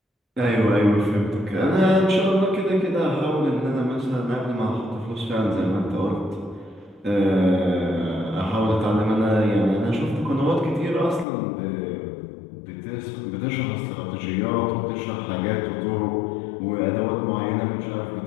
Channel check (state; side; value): drops out; right; at 11.2 s